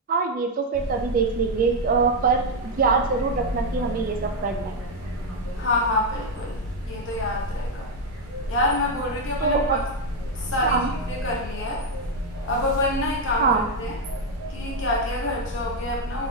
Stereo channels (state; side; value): normal; both; correlation 0.04